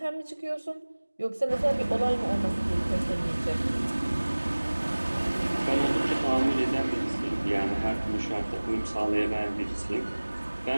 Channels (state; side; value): inverted; both; correlation -1.00